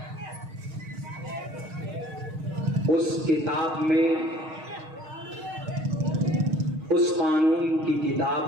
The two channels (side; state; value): left; late; 6.4 ms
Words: उस किताब में, उस कानून की